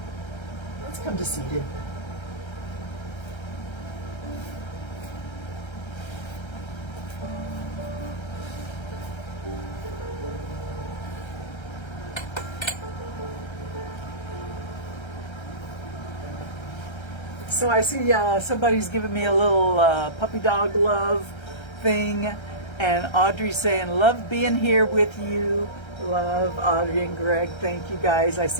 Let's come to seated. So I see somebody's giving me a little puppy dog love thing, and Audrey's saying, love being here with you. Love Audrey and Greg, thank you guys. I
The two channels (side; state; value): right; late; 1.3 ms